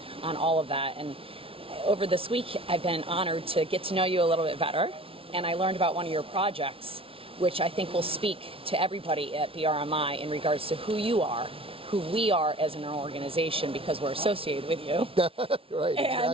on all of that. And over this week, I've been honored to get to know you a little bit better, and I learned about one of your projects, which I think will speak to everybody at BRMI in regards to who you are, who we are as an organization, because we're associated with you. Right,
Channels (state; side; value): late; left; 0.26 ms